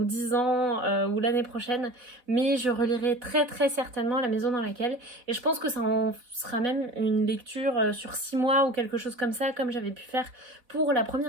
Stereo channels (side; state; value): left; late; 4.1 ms